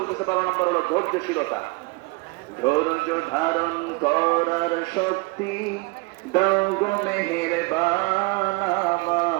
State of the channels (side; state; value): left; quieter; 26.0 dB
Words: 12 নম্বর হলো ধৈর্যশীলতা। ধৈর্য ধারণ করার শক্তি দাও গো মেহেরবান